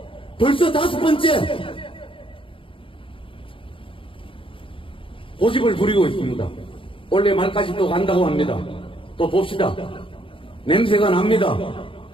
벌써 5번째 고집을 부리고 있습니다. 올해 말까지 또 간다고 합니다. 또 봅시다. 냄새가 납니다.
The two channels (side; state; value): right; late; 0.25 ms